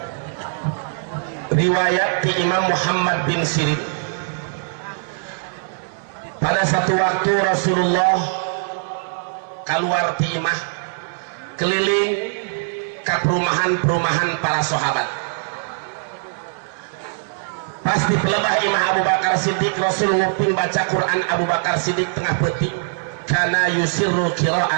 Riwayat di Imam Muhammad bin Sirin, pada satu waktu Rasulullah keluar di imah keliling ke perumahan-perumahan para sahabat. Pas di pelebah imah Abu Bakar Siddiq, Rasul nguping baca Quran. Abu Bakar Siddiq tengah petik kana yusirru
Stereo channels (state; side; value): silent; left; 56 dB below the other